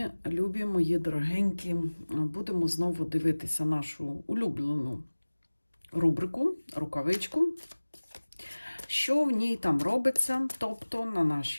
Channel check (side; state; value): both; inverted; correlation -1.00